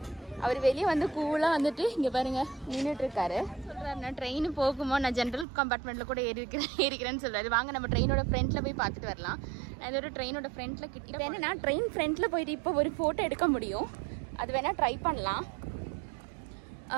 அவர் வெளியே வந்து கூலாக வந்துட்டு இங்கே பாருங்கள் நின்றுட்டுருக்காரு. சொல்கிறாரு, நான் ட்ரெயின் போகுமோ, நான் ஜென்ரல் கம்பார்ட்மெண்ட்டில் கூட ஏறிக்கிறேன்னு சொல்கிறாரு. வாங்க நம்ம ட்ரெயினோட ஃப்ரண்ட்டில் போய் பார்த்துட்டு வரலாம். நான் இதோட ட்ரெயினோட ஃப்ரண்ட்டில் இப்போ என்னென்னா, ட்ரெயின் ஃப்ரண்ட்டில் போயிட்டு இப்போ ஒரு ஃபோட்டோ எடுக்க முடியும். அது வேணால் ட்ரை பண்ணலாம்.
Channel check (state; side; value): drops out; left; at 5.5 s